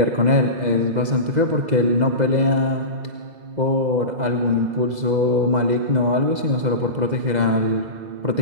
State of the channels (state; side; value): late; left; 2.0 ms